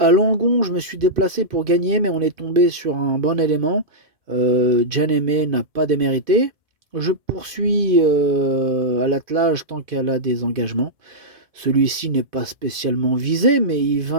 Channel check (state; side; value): late; left; 2.5 ms